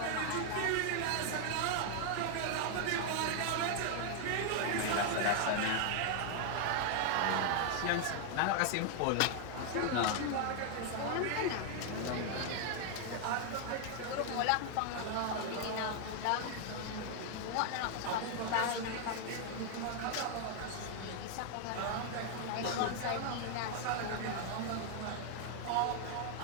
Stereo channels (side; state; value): both; different; correlation 0.00